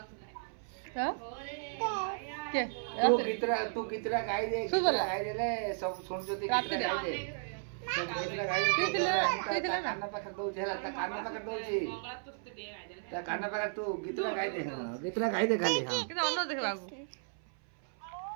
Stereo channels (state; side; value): silent; left; 55 dB below the other